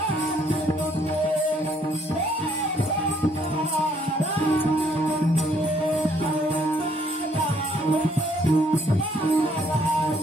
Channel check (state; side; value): normal; both; correlation 0.66